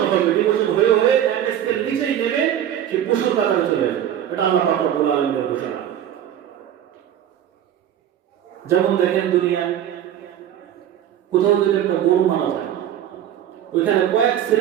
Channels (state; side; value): quieter; left; 10.6 dB